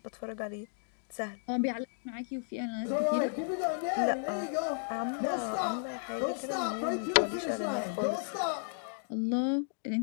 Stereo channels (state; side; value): silent; right; digital silence